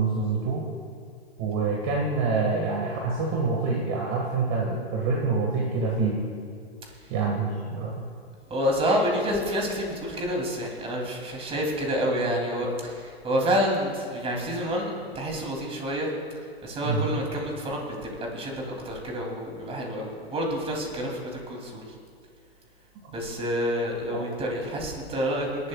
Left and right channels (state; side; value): normal; both; correlation 0.17